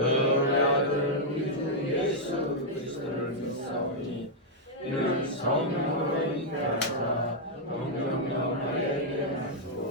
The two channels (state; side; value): normal; both; correlation -0.04